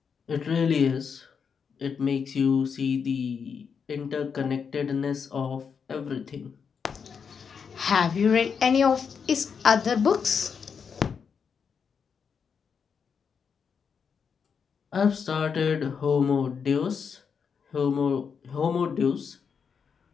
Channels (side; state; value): right; quieter; 6.3 dB